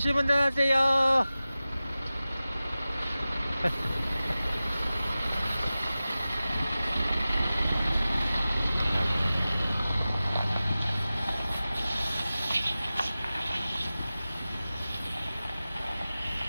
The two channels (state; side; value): inverted; both; correlation -0.96